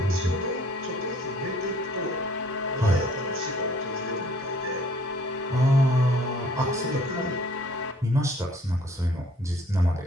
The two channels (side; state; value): both; normal; correlation 0.57